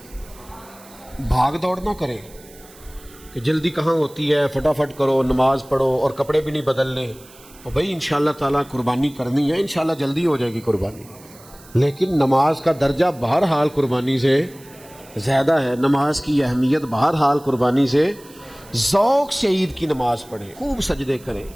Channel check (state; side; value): noise; right; hiss, 23 dB below the sound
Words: بھاگ دوڑ نہ کریں کہ جلدی کہاں ہوتی ہے، فٹافٹ کرو، نماز پڑھو اور کپڑے بھی نہیں بدلنے، اور بھائی انشاءاللہ تعالیٰ قربانی کرنی ہے، انشاءاللہ جلدی ہو جائے گی قربانی، لیکن نماز کا درجہ بہرحال قربانی سے زیادہ ہے، نماز کی اہمیت بہرحال قربانی سے۔ ذوق سے عید کی نماز پڑھیں، خوب سجدے کریں،